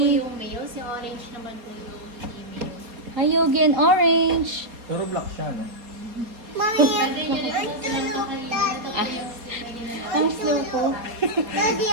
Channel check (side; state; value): left; late; 4.2 ms